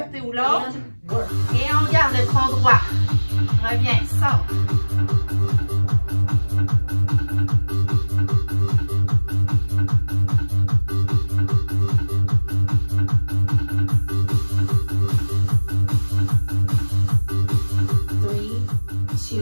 ou l'autre. Et on garde le tronc droit. Reviens, sors.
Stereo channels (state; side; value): inverted; both; correlation -1.00